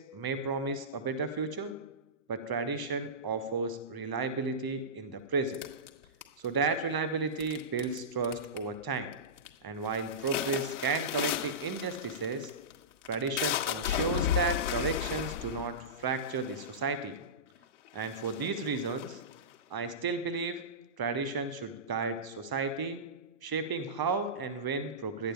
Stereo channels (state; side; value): late; left; 1.0 ms